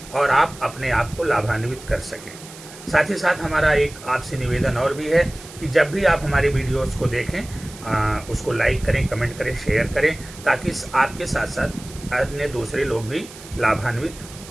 और आप अपने आप को लाभान्वित कर सकें। साथ ही साथ हमारा एक आपसे निवेदन और भी है कि जब भी आप हमारे वीडियोस को देखें उसको लाइक करें, कमेंट करें, शेयर करें ताकि आपके साथ साथ अन्य दूसरे लोग भी लाभान्वित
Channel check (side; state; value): right; noise; hiss, 17 dB below the sound